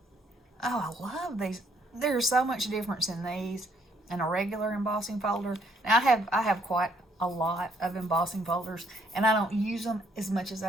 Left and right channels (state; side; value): normal; both; correlation 0.69